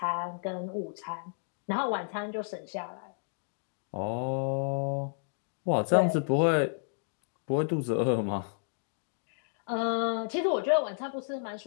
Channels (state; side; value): silent; right; digital silence